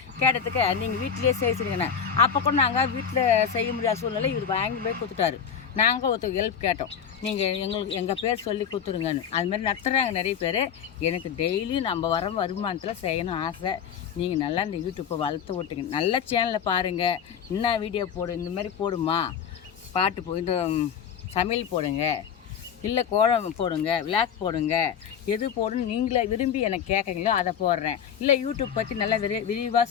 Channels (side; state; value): right; quieter; 7.7 dB